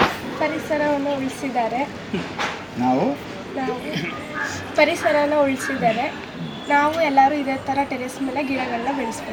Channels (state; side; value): identical; both; correlation 1.00